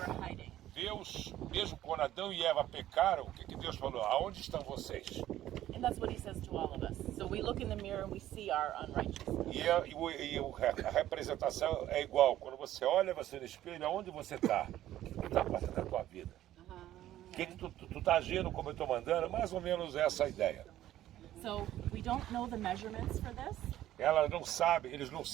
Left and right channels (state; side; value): quieter; left; 13.3 dB